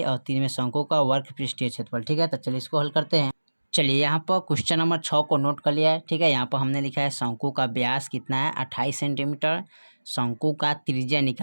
और 3 में शंकु का वर्ग पृष्ठीय क्षेत्रफल। ठीक है, तो चलिए इसको हल करते हैं। चलिए यहाँ पर क्वेश्चन नंबर 6 को नोट कर लिया है। ठीक है, यहाँ पर हमने लिखा है शंकु का व्यास कितना है 28 सेंटीमीटर। शंकु का त्रिज्या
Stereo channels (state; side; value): inverted; both; correlation -1.00